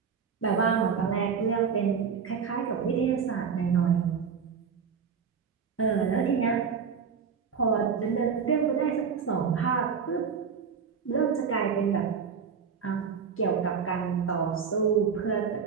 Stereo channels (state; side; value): quieter; left; 6.4 dB